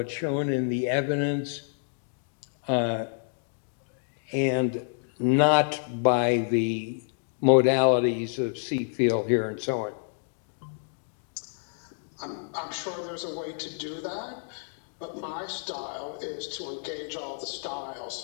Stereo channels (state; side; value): silent; right; digital silence